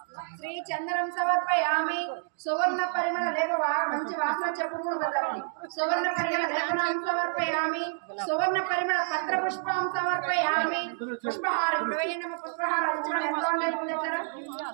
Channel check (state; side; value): silent; left; digital silence